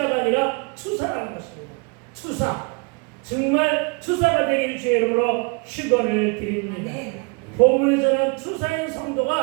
아니라 투사라는 것입니다. 정말 투사가 되기를 주의 이름으로 축원을 드립니다. 본문에서는 투사인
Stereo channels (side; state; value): left; quieter; 32.5 dB